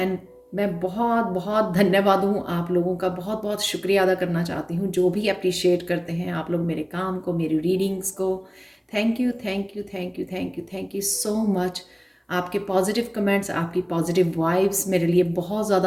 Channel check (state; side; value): identical; both; correlation 1.00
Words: मैं बहुत बहुत धन्यवाद हूँ आप लोगों का, बहुत बहुत शुक्रिया अदा करना चाहती हूँ जो भी अप्रिशिएट करते हैं आप लोग मेरे काम को, मेरी रीडिंग्स को। Thank you thank you thank you thank you thank you so much. आपके पॉजिटिव कमेंट्स, आपकी पॉजिटिव वाइब्स मेरे लिए बहुत